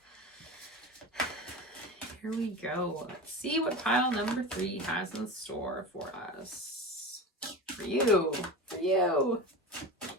Here we go. Let's see what pile number 3 has in store for us. For you. For you.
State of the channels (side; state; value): both; normal; correlation 0.28